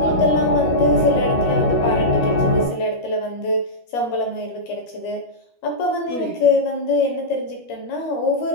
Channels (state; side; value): late; right; 13 ms